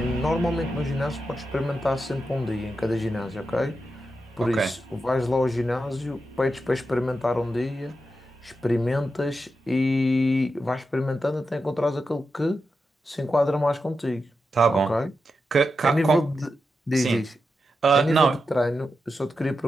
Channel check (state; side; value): normal; both; correlation 0.88